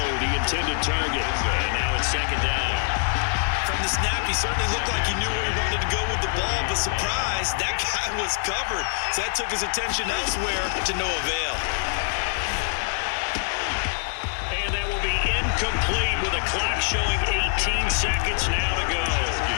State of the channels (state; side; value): silent; right; digital silence